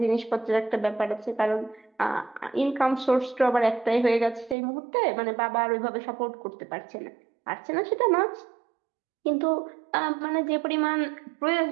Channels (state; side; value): drops out; left; at 4.5 s